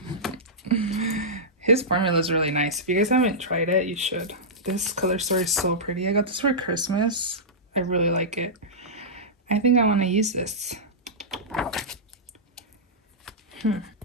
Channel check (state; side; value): normal; both; correlation -0.14